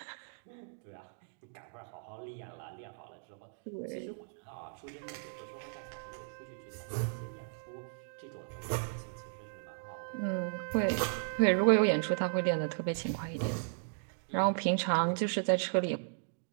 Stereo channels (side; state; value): left; silent; digital silence